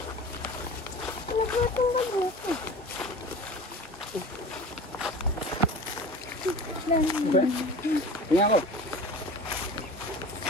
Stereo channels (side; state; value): both; normal; correlation 0.37